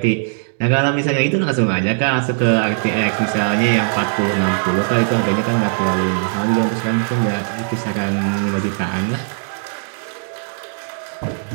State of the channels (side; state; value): left; silent; digital silence